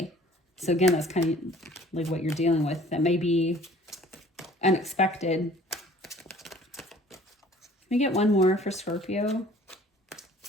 So again, that's kind of like what you're dealing with. That may be unexpected. Let me get one more for Scorpio.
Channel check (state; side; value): normal; both; correlation 0.52